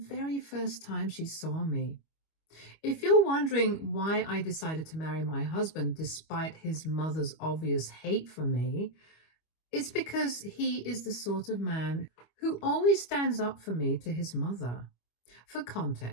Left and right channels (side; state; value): right; late; 25 ms